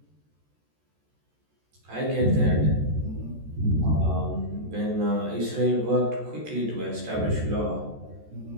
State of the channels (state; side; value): late; left; 14 ms